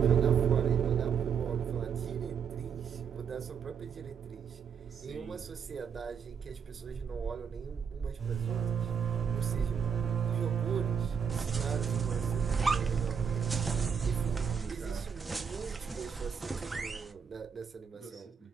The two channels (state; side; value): quieter; left; 7.0 dB